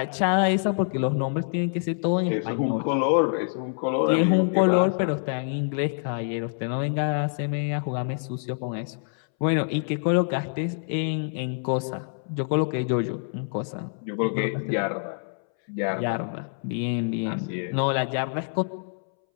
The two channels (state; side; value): silent; right; 61 dB below the other